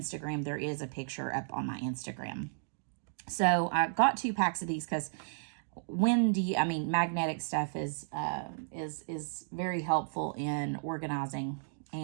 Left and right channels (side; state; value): left; silent; digital silence